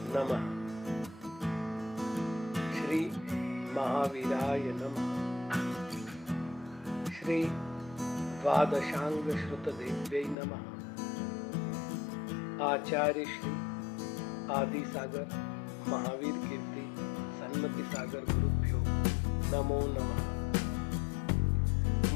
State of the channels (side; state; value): right; drops out; at 10.4 s